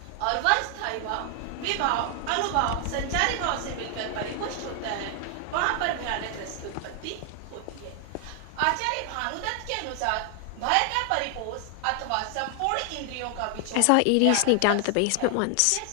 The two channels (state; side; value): different; both; correlation 0.00